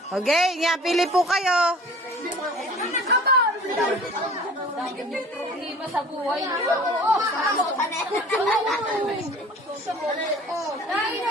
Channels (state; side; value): normal; both; correlation 0.46